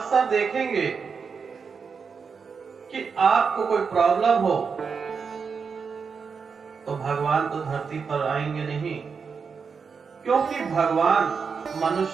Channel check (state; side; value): quieter; left; 5.7 dB